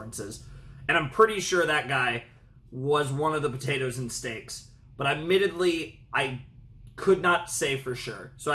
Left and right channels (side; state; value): both; identical; correlation 1.00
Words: And I'm pretty sure that guy was one of the potatoes and Steaks. But admittedly, I could not say for sure. So